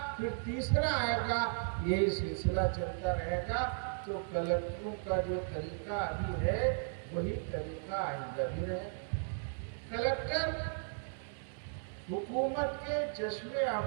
پھر تیسرا آئے گا، یہی سلسلہ چلتا رہے گا۔ تو کلکٹروں کا جو طریقہ ابھی ہے وہی طریقہ آئندہ بھی رہے۔ کلکٹر حکومت کے چشم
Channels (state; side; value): silent; left; digital silence